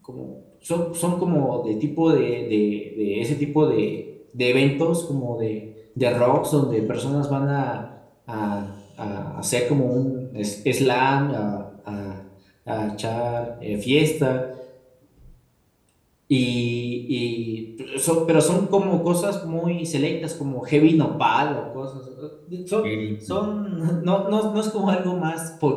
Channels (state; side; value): identical; both; correlation 1.00